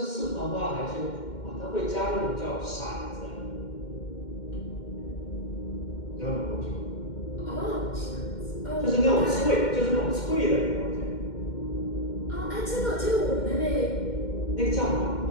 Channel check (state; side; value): late; right; 2.1 ms